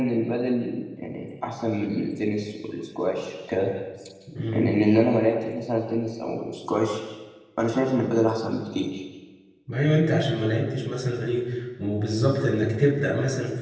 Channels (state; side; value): identical; both; correlation 1.00